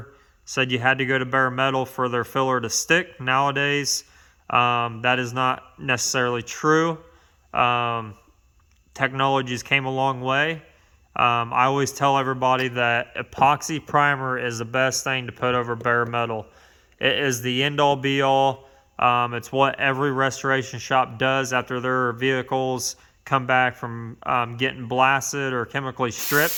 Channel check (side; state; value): both; identical; correlation 1.00